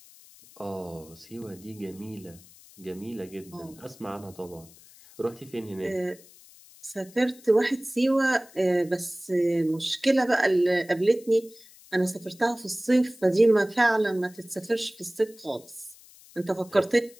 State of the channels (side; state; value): left; noise; hiss, 23 dB below the sound